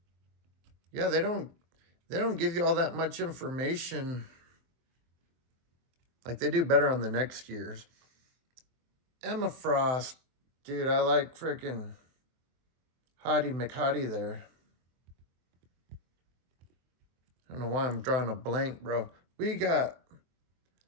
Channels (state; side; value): late; left; 23 ms